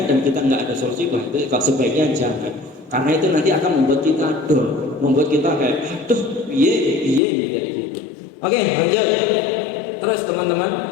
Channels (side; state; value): right; drops out; at 7.2 s